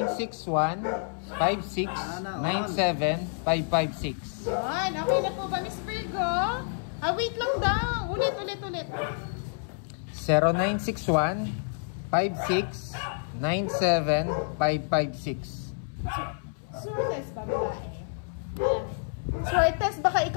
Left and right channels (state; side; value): silent; right; 59 dB below the other